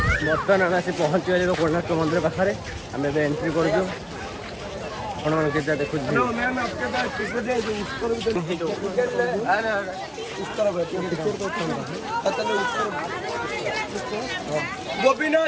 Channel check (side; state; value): both; identical; correlation 1.00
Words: बर्तमान आम आसी पहुँची गले कोणार्क मंदिर पाखे आम एंट्री कर देखो